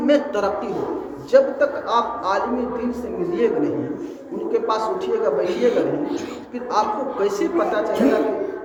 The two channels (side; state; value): both; identical; correlation 1.00